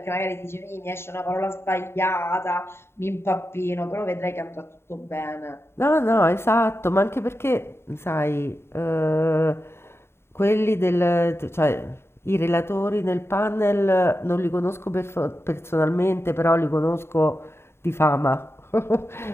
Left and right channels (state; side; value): late; right; 0.12 ms